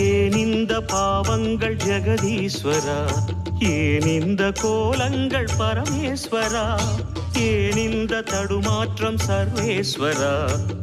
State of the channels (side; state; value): both; identical; correlation 1.00